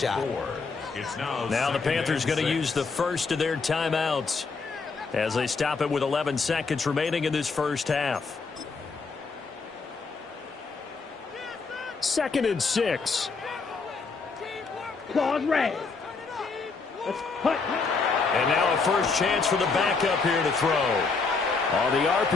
Now the Panthers going to use the first of their timeouts as they stop it with 11 seconds remaining in this first half. 2nd and 6. Claws red. Let's hut. And now a first chance for the backup here to throw. On the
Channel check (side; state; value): right; quieter; 4.5 dB